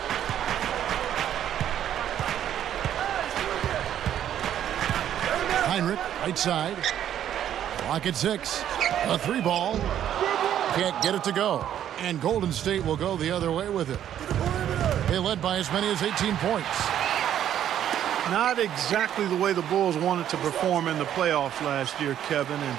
Heinrich, right side. Clock at 6. A 3 ball. Can't get it to go. And Golden State will go the other way with it. They led by as many as 18 points. Not exactly the way the Bulls wanted to perform in the playoffs last year, Kevin.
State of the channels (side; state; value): left; quieter; 10.6 dB